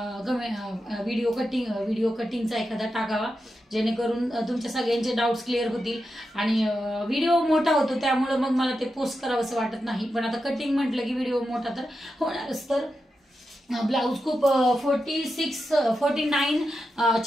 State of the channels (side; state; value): both; normal; correlation 0.89